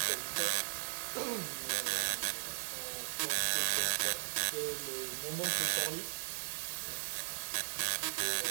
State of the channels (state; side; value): silent; left; 53 dB below the other